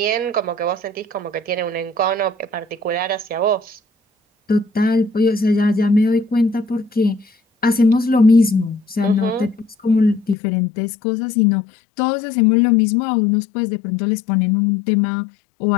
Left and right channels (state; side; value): drops out; right; at 10.4 s